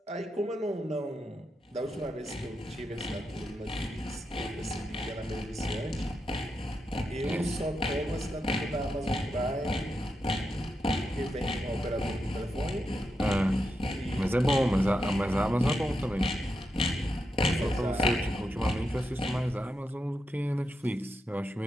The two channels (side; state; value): both; normal; correlation 0.86